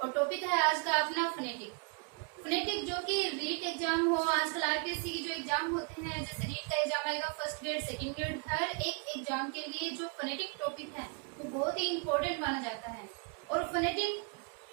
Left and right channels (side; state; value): left; quieter; 35.1 dB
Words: और topic है आज का अपना फोनेटिक। फोनेटिक जो कि रीट एग्जाम हो, आजकल आरपीएससी की जो एग्जाम होते हैं, जैसे रीट का एग्जाम आएगा, फर्स्ट ग्रेड, सेकंड ग्रेड, हर एक एग्जाम के लिए जो फोनेटिक टॉपिक है वो बहुत ही इम्पोर्टेंट माना जाता है। और